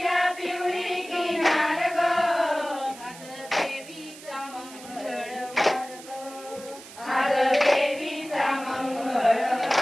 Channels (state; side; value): noise; right; hiss, 17 dB below the sound